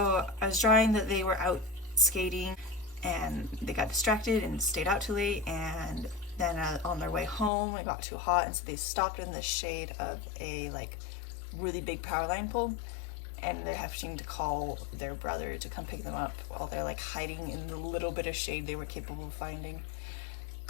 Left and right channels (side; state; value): right; drops out; at 7.5 s